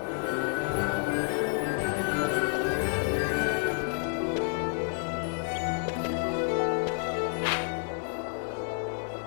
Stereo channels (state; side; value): silent; right; 58 dB below the other